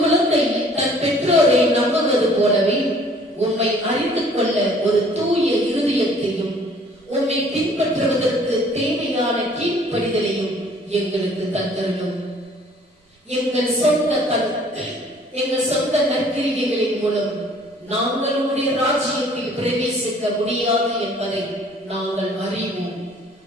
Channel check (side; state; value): both; normal; correlation 0.56